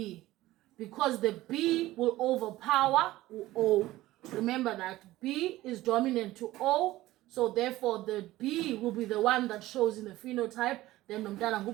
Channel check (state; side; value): quieter; left; 16.7 dB